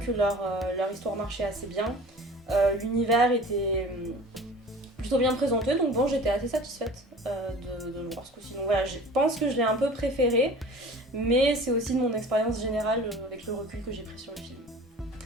leur histoire marchait assez bien. L'univers était plutôt bien présenté, donc bon, j'étais assez satisfaite de le voir ce coup-ci. Donc voilà, je pense que je l'ai un peu préféré, mais c'est aussi de mon expérience générale avec le recul que j'ai pris sur le film.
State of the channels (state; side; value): normal; both; correlation 0.42